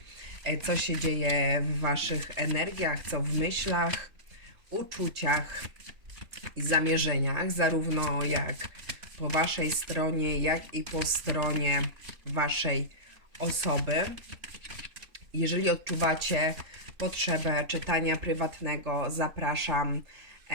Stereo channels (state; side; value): late; left; 3.3 ms